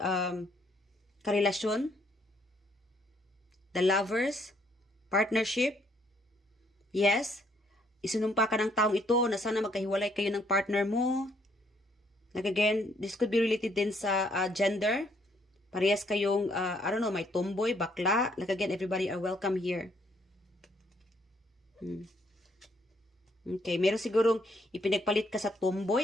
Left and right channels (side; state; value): both; normal; correlation 0.68